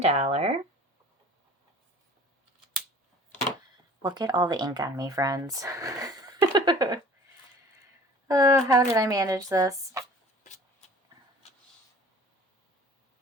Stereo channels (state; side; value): normal; both; correlation 0.47